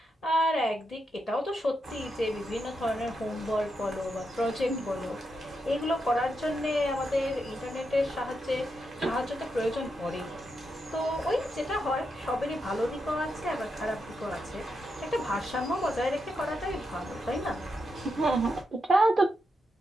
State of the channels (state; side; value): normal; both; correlation 0.84